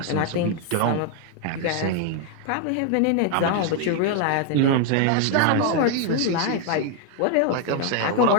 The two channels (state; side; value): different; both; correlation 0.00